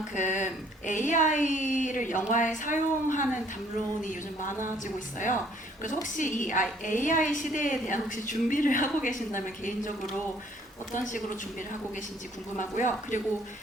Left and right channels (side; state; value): both; normal; correlation 0.61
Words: AI를 영화에 사용하는 담론이 요즘 많아지고 있어요. 그래서 혹시 이 AI 시대에 대한 혹시 준비를 하고 계신다면 개인적으로 어떤 식으로 준비를 하고 계신지 궁금하고요. 그리고